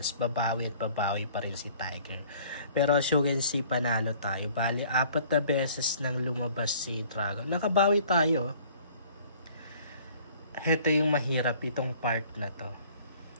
Babawi at babawi pa rin si Tiger. Pero as you can see, panalo tayo. Bali, 4 na beses nang lumabas si Dragon. Nakabawi tayo. Ito yung mahirap itong part na to.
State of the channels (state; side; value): inverted; both; correlation -0.53